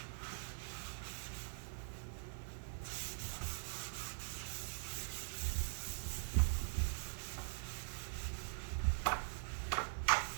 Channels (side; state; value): left; silent; digital silence